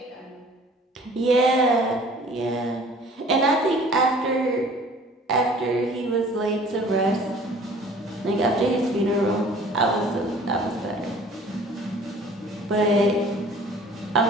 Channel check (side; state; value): both; normal; correlation 0.50